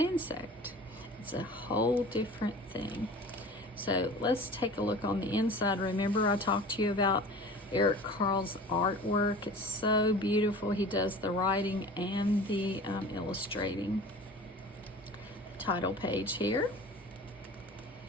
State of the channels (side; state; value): both; normal; correlation 0.40